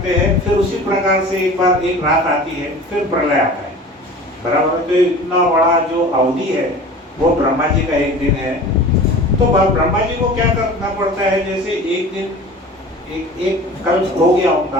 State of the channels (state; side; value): normal; both; correlation 0.39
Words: हैं? फिर उसी प्रकार से एक बार एक रात आती है, फिर प्रलय आता है, बराबर है। तो इतना बड़ा जो अवधि है वो ब्रह्मा जी का एक दिन है। तो ब्रह्मा जी को क्या करना पड़ता है? जैसे एक दिन एक कल्प हो गया,